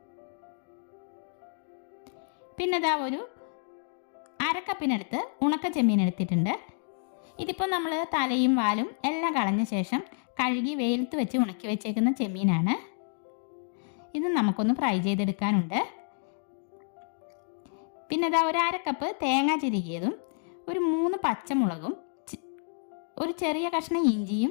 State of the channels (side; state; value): right; silent; 57 dB below the other